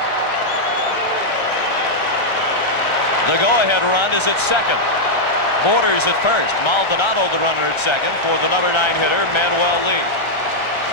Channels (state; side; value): late; right; 1.3 ms